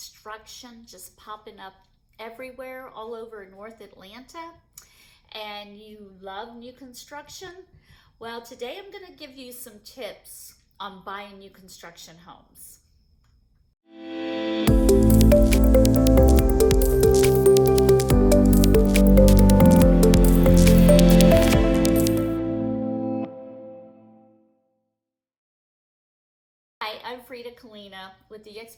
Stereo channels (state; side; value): identical; both; correlation 1.00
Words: just popping up everywhere all over North Atlanta? And you love new construction? Well, today I'm going to give you some tips on buying new construction homes. Hi, I'm Frida Kalina with